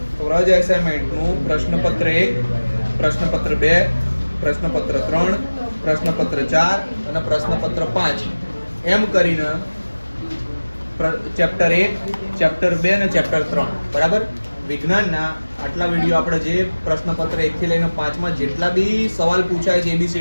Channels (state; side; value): inverted; both; correlation -1.00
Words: વ્રજ એસાઇનમેન્ટનું પ્રશ્નપત્ર 1, પ્રશ્નપત્ર 2, પ્રશ્નપત્ર 3, પ્રશ્નપત્ર 4 અને પ્રશ્નપત્ર 5 એમ કરીને ચેપ્ટર 1, ચેપ્ટર 2 અને ચેપ્ટર 3 બરાબર. વિજ્ઞાનના આટલા વિડીયો આપણે જે પ્રશ્નપત્ર 1 થી લઈને 5 માં જેટલા બી સવાલ પૂછાય છે